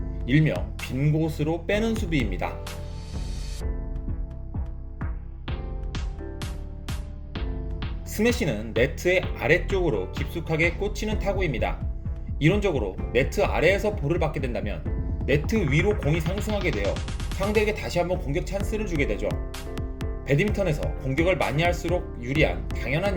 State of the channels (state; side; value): identical; both; correlation 1.00